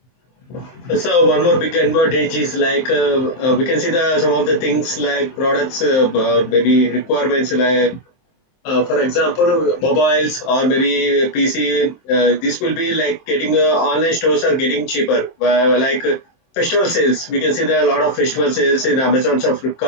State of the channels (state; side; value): late; right; 23 ms